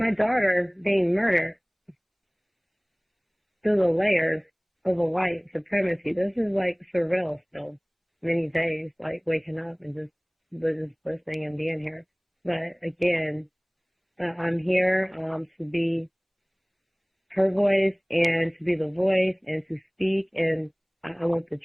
daughter being murdered through the layers of a white supremacy. This is like surreal still, many days, like waking up and just listening and being here. But again, I'm here to be her voice and to be the voice and to speak. And I want the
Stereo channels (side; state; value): both; identical; correlation 1.00